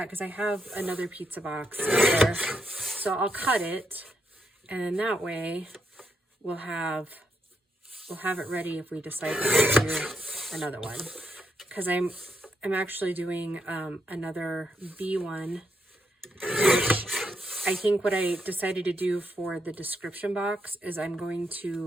because I have another pizza box there. So I'll cut it, and then that way we'll have it ready if we decide to do another one. Because I'm actually doing another B one, which I think what I decided to do for the description box is I'm going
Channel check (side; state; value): both; normal; correlation 0.80